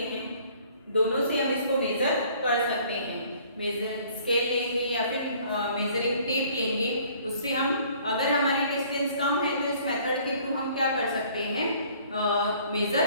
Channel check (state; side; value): inverted; both; correlation -0.56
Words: हैं। दोनों से हम इसको मेजर कर सकते हैं। मेजर स्केल लेंगे या फिर मेजरिंग टेप लेंगे, उससे हम अगर हमारी डिस्टेंस कम है तो इस मेथड के थ्रू हम क्या कर सकते हैं? मेजर